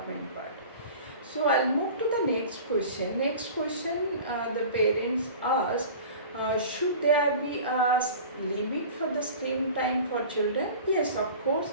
part. So I'll move to the next question. Next question, the parents ask, should there be a limit for the screen time for children? Yes, of course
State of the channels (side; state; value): both; inverted; correlation -0.39